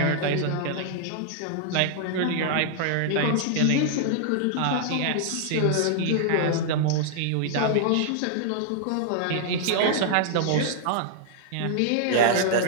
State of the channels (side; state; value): both; different; correlation -0.01